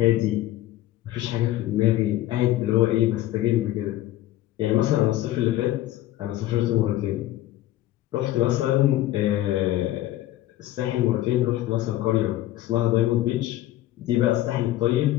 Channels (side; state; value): right; quieter; 14.8 dB